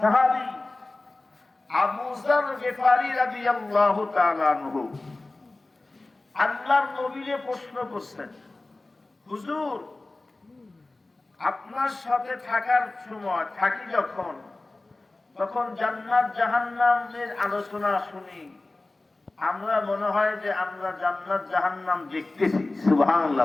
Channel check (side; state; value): right; quieter; 3.0 dB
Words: আবু যর গিফারি রাদিয়াল্লাহু তাআলা আনহু আল্লাহর নবীকে প্রশ্ন করছেন, হুজুর আপনার সাথে থাকার সময় থাকি যখন, তখন জান্নাত জাহান্নামের আলোচনা শুনি, আমরা মনে হয় যে আমরা জান্নাত জাহান্নাম দেখতেছি।